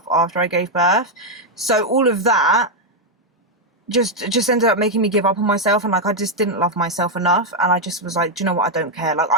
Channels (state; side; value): normal; both; correlation 0.01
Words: after I gave birth. So all of that just ended up making me give up on myself, and like I just didn't love myself enough, and I just was like, do you know what, I don't care. Like